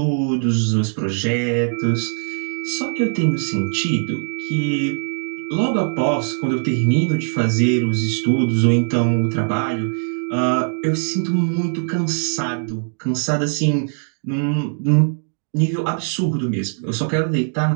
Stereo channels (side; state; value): left; silent; digital silence